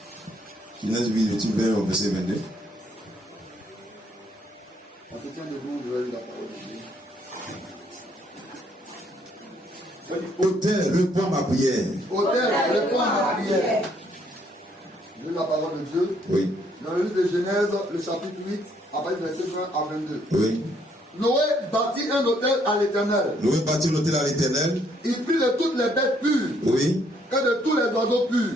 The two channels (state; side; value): normal; both; correlation 0.68